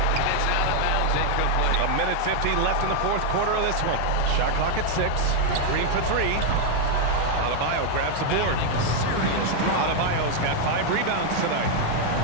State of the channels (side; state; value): both; different; correlation 0.00